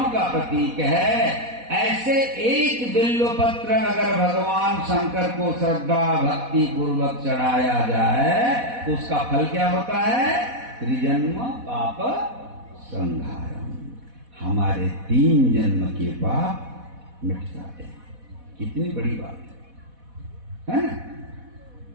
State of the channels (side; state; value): left; late; 4.1 ms